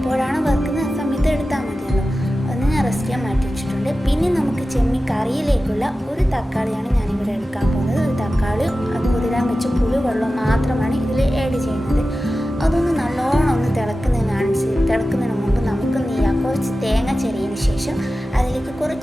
വറുക്കുന്നത് ആ സമയത്ത് എടുത്താൽ മതിയല്ലോ. അതൊന്ന് ഞാൻ റെസ്റ്റ് ചെയ്യാൻ മാറ്റി വെച്ചിട്ടുണ്ട്. പിന്നെ നമുക്ക് ചെമ്മീൻ കറിയിലേക്കുള്ള ഒരു തക്കാളിയാണ് ഞാനിവിടെ എടുക്കാൻ പോകുന്നത്. ഒരു തക്കാളിയും അത് കുതിരാൻ വെച്ച പുളി വെള്ളം മാത്രമാണ് ഇതിൽ ആഡ് ചെയ്യുന്നത്. അതൊന്ന് നല്ലോണം ഒന്ന് തിളക്കുന്നതിന് മുമ്പ് നമുക്ക് എന്ത് ചെയ്യാം, കുറച്ച് തേങ്ങ ചിരകിയതിന് ശേഷം അതിലേക്ക്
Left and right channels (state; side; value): normal; both; correlation 0.94